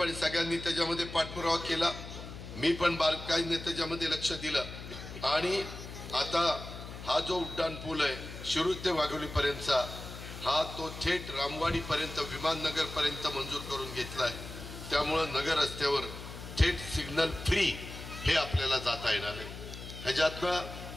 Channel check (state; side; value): noise; left; hum, 11 dB below the sound